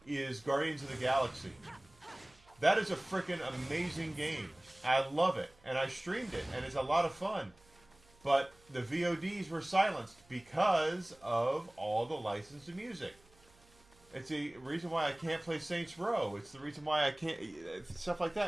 is Guardians of the Galaxy. That is a freaking amazing game. I love it, and I streamed it, and it's a lot of fun. But the VODs were silenced because of all the licensed music. It's the reason why I can't play Saints Row. It's the reason why I can't... Stuff like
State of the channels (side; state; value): right; noise; hum, 29 dB below the sound